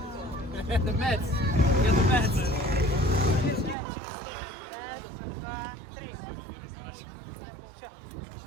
The Mets. Get the Mets.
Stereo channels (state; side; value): drops out; left; at 3.8 s